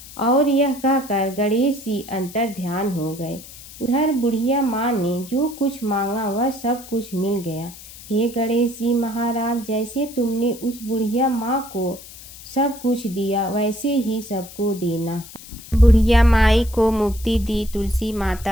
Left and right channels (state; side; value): noise; left; hiss, 17 dB below the sound